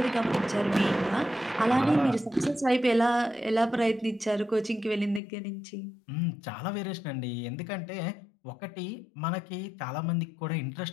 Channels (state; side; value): drops out; right; at 5.2 s